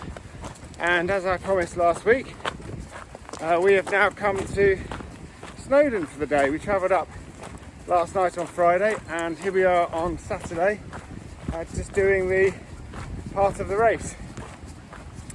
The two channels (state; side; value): identical; both; correlation 1.00